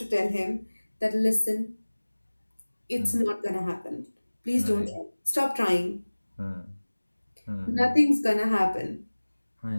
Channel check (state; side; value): inverted; both; correlation -1.00